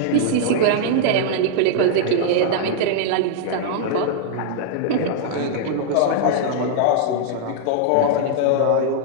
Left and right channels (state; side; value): different; both; correlation -0.01